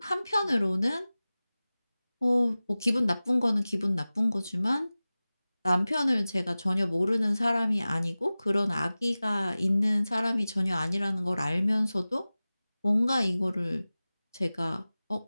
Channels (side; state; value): both; inverted; correlation -0.97